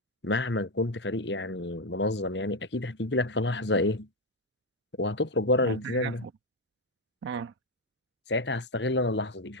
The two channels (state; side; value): normal; both; correlation 0.07